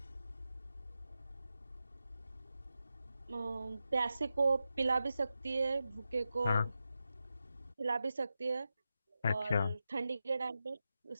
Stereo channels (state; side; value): inverted; both; correlation -0.90